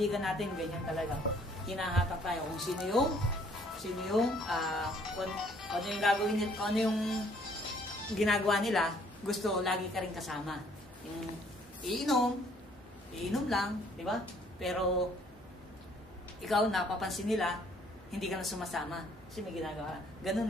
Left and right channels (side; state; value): both; normal; correlation 0.62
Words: natin, ganyan talaga. Hinahatak tayo kung sino yung ano yung gagawin nila, ano yung ginagawa nila, gusto lagi ka rin kasama. Yung iinom lang, di ba? Pero ikaw napapansin nila, hindi ka na sumasama kasi may ginagawa. Ganun